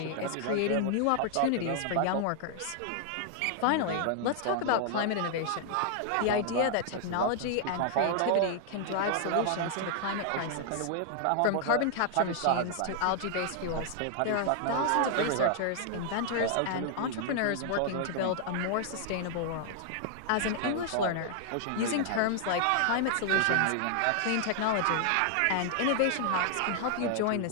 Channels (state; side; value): different; both; correlation 0.00